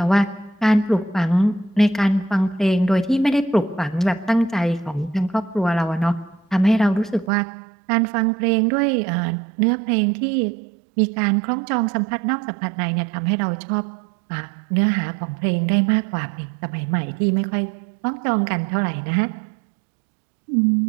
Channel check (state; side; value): drops out; left; at 7.3 s